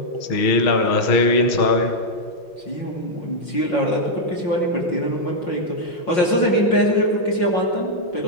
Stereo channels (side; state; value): right; late; 5.6 ms